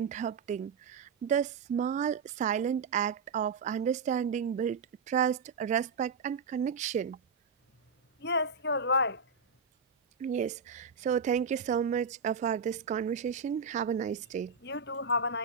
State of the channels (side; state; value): left; quieter; 5.0 dB